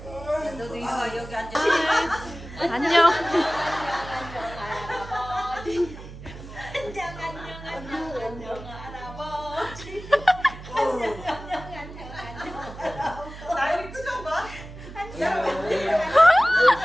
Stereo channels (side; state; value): right; noise; hum, 14 dB below the sound